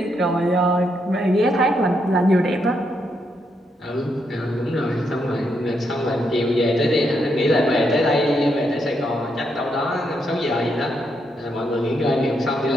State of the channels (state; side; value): normal; both; correlation 0.79